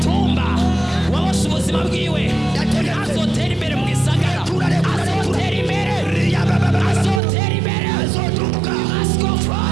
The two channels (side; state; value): left; drops out; at 7.2 s